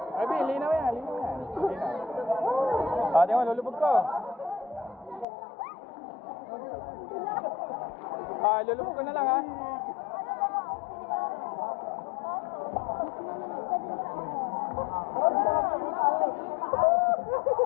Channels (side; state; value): right; drops out; at 5.2 s